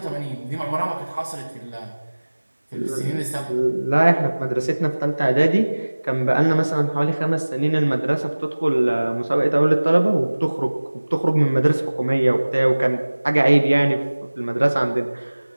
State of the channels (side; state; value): both; inverted; correlation -1.00